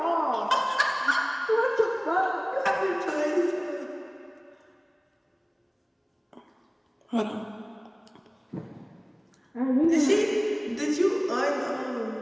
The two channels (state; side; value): identical; both; correlation 1.00